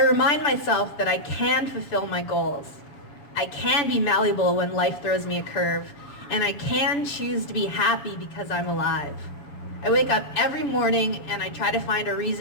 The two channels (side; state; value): right; late; 6.9 ms